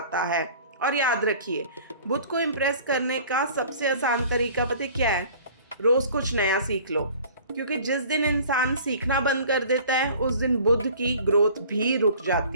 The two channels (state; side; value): inverted; both; correlation -0.47